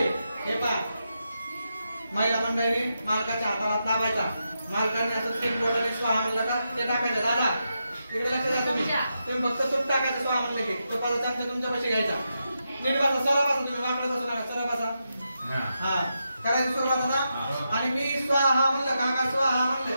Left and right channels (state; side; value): inverted; both; correlation -0.86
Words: हे पहा महिला मंडळीने मालकाच्या हाताला लावायचा. मालकाने असं 3 बोटाने स्वाहा म्हणलं का ते टाकायचं. दादा इकडे लक्ष द्या. तुम्ही फक्त तूप टाकायचं. स्वाहा म्हणलं की तुपाचा चमचा तुमच्या पैसे घ्यायचा. नीट बसा. सरळ बसा. तुम्ही वाकडं बसू नका. सरळ बसा. हा करायची सुरुवात आता. आणि मी स्वाहा म्हणलं काका स्वाहा म्हणलं